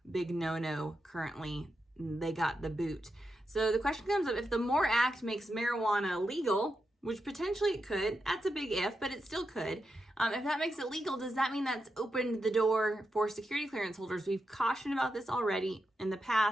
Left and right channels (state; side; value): normal; both; correlation 0.87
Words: Big no-no currently. They got the boot. So the question comes up, if the MORE Act makes marijuana legal, which potentially it could, that's a big if, but it still could. If that makes it legal, does that mean that's opened the door for security clearance holders? We've cautioned about this already in the